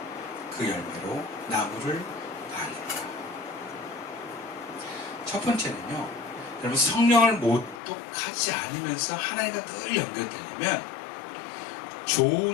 그 열매로 나무를 아니라. 첫 번째는요, 여러분 성령을 모독하지 않으면서 하나님과 늘 연결되려면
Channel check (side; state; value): right; drops out; at 7.8 s